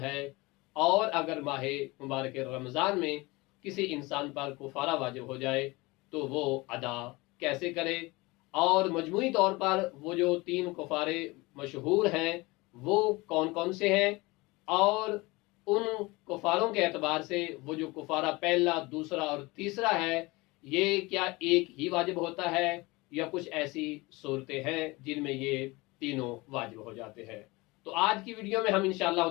और अगर माह मुबारक रमज़ान में किसी इंसान पर कुफारा वाजिब हो जाए तो वो अदा कैसे करे, और मजमूई तौर पर वो जो 3 कुफारे मशहूर हैं वो कौन कौन से हैं, और उन कुफारों के एतबार से वो जो कुफारा पहला, दूसरा और तीसरा है ये क्या एक ही वाजिब होता है या कुछ ऐसी सूरतें हैं जिनमें ये तीनों वाजिब हो जाते हैं। तो आज की वीडियो में हम इंशाअल्लाह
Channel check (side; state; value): right; quieter; 23.1 dB